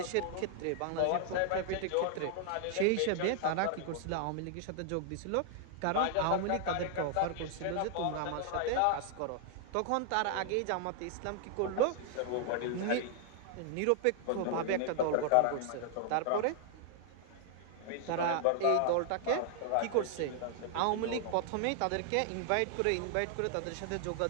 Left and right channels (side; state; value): both; different; correlation 0.00